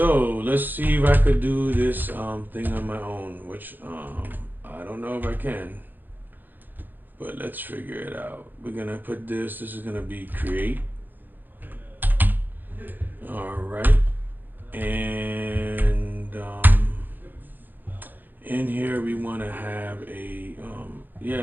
let's see if I could do this thing on my own, which I don't know if I can, but let's figure it out. We're gonna put this is gonna be create. All right. And in here we want to have a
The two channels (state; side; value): late; left; 0.088 ms